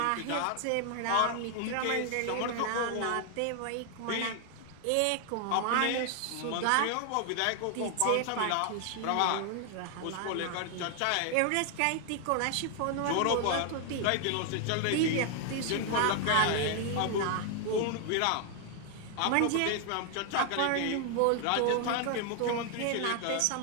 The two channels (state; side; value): different; both; correlation 0.00